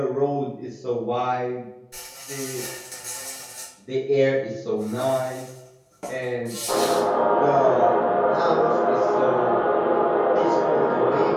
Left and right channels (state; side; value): identical; both; correlation 1.00